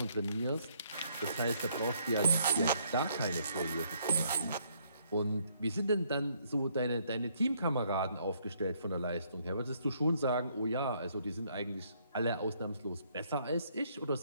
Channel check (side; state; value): both; inverted; correlation -0.68